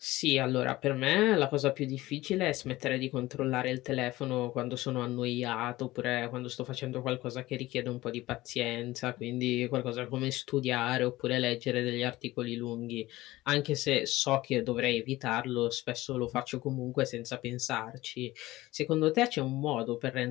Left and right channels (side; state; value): right; quieter; 17.9 dB